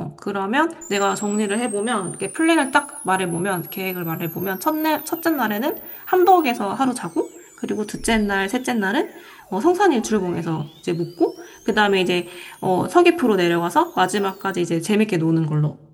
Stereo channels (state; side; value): identical; both; correlation 1.00